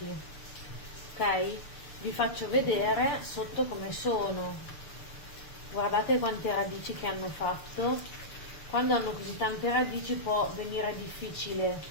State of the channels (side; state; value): right; late; 6.8 ms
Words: ok? Vi faccio vedere sotto come sono. Guardate quante radici che hanno fatto. Quando hanno così tante radici può venire